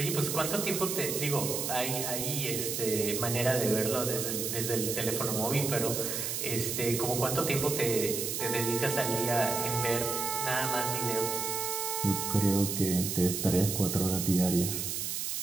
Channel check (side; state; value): right; noise; hiss, 2 dB below the sound